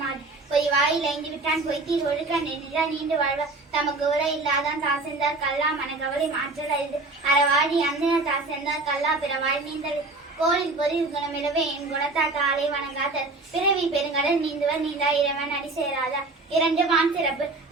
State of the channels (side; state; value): left; quieter; 3.3 dB